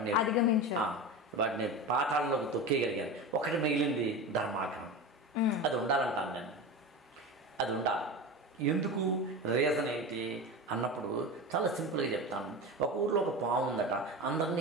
వాటిని పాతాళంలోకి తొక్కేయగలిగాను. ఒకటి మిగిలింది ధర్మాగ్రహం. అది ఉండాలంటాను నేను, అది ఉండాలి. ఎందుకు, రీజన్ ఏంటి అన్నప్పుడు చాలా సింపుల్గా చెప్తాను. ఒక ఊర్లో ఒక పాము ఉందట,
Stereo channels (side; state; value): both; normal; correlation 0.26